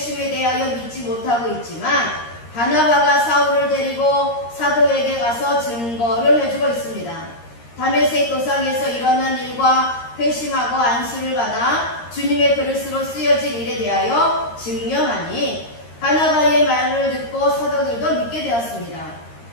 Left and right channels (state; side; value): late; right; 13 ms